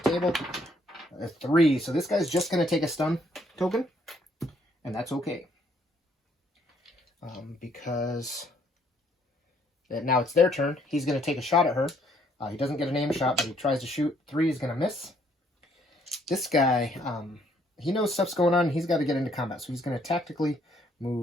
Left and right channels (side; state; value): both; normal; correlation 0.67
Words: the table. A 3. So this guy's just going to take a stun token. And that's okay. Because now it's their turn. He's going to take a shot at her. He doesn't get an aim shot, but he tries to shoot. 3 is going to miss. This guy, he knows stuff's going on. He's got to get into combat. So he's going to tactically